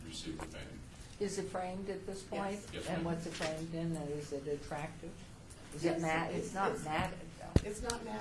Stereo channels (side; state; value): both; identical; correlation 1.00